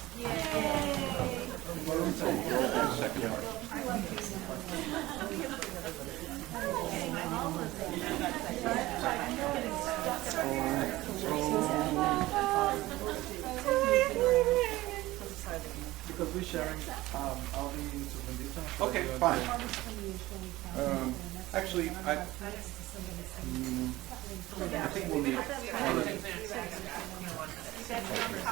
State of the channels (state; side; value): quieter; left; 18.0 dB